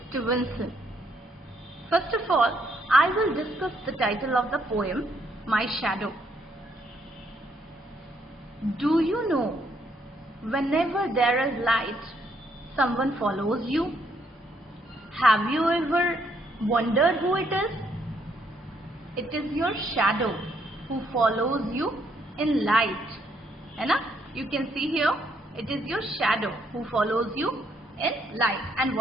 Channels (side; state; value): both; normal; correlation 0.71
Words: Stevenson. First of all, I will discuss the title of the poem, My Shadow. Do you know, whenever there is light, someone follows you? Have you ever wondered who it is? It is your shadow who follows you in light. है ना? You can see here, it is your shadow who follows you in light. And